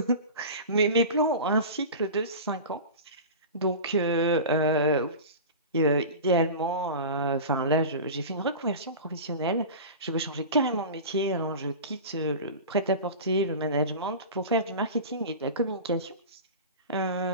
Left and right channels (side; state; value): both; inverted; correlation -0.32